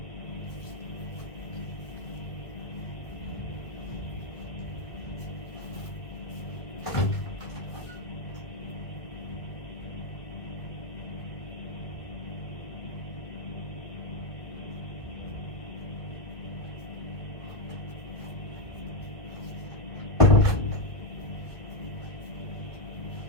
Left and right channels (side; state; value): right; late; 1.8 ms